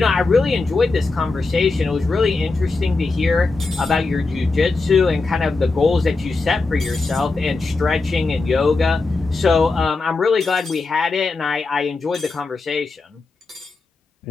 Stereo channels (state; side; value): quieter; right; 3.7 dB